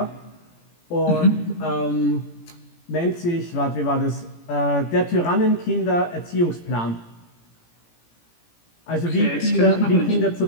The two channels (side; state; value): right; late; 17 ms